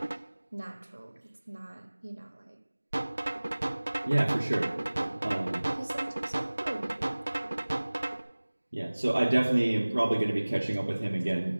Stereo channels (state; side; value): inverted; both; correlation -1.00